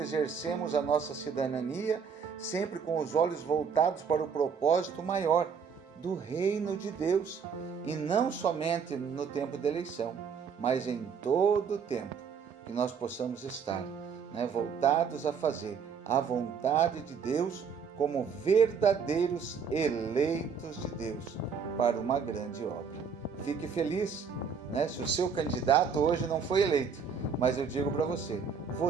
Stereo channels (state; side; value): quieter; left; 6.2 dB